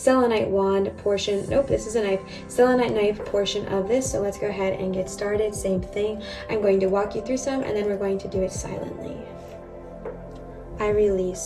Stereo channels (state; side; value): identical; both; correlation 1.00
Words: wand portion. Nope, this is a knife. Selenite knife portion of this. So let's go ahead and get started. Same thing. I'm going to walk you through some and then we're going to do it silently. I